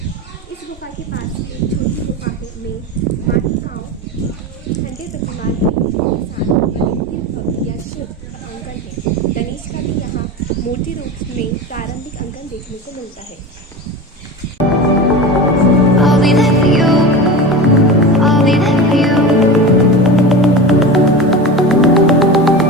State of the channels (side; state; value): both; normal; correlation 0.28